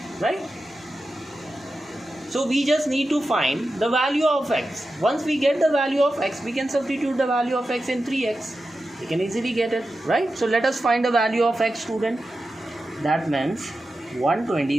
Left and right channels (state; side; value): normal; both; correlation 0.92